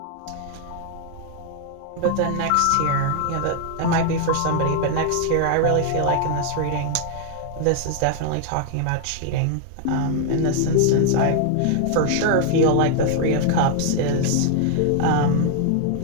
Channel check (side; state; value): both; different; correlation 0.00